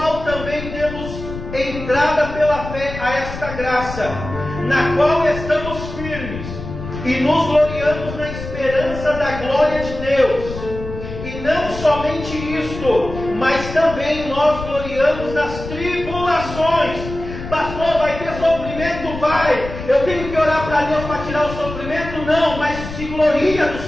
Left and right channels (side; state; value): left; noise; rumble, 10 dB below the sound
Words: também temos entrada pela fé a esta graça, na qual estamos firmes, e nos gloriamos na esperança da glória de Deus. E não somente isto, mas também nós gloriamos nas tribulações. Pastor, vai ter sofrimento? Vai. Eu tenho que orar para Deus para tirar o sofrimento? Não, mas se gloria do